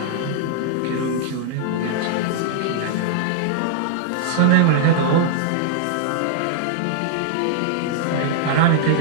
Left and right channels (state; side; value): different; both; correlation -0.01